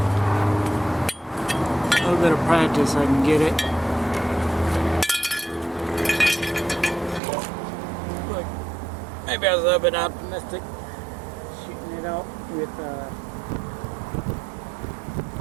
little bit of practice I can get it. Look, maybe I was a little bit optimistic shooting it out with a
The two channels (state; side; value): drops out; left; at 7.2 s